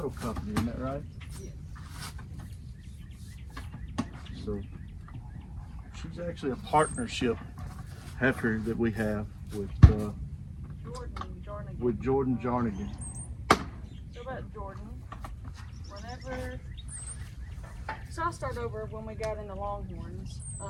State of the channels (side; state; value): both; identical; correlation 1.00